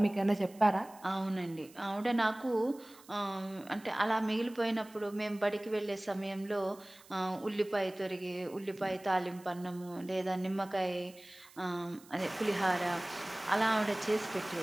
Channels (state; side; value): noise; right; hiss, 24 dB below the sound